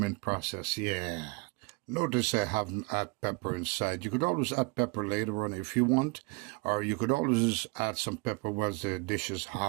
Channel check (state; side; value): quieter; left; 28.8 dB